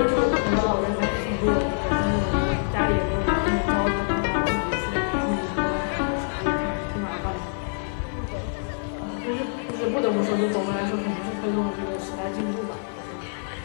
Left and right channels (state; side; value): silent; right; 57 dB below the other